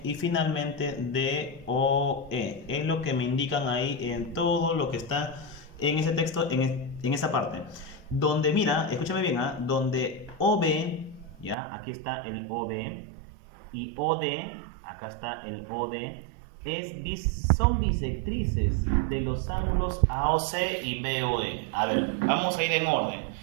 y finalmente DOE. Es lo que me indican ahí en todo lo que está en ese texto, en esa parte. Donde, mira, escúchame bien, ¿ah? Donde OB, ya, aquí está el OB, y OD, acá está el OD, son bisectrices de los ángulos AOC y BOE. A ver, vamos a ir en orden.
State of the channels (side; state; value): left; drops out; at 11.6 s